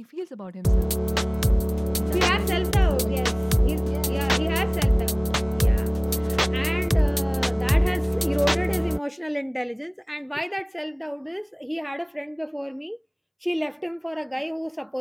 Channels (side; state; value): both; identical; correlation 1.00